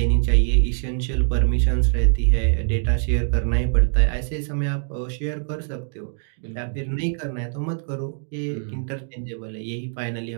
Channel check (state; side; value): silent; left; digital silence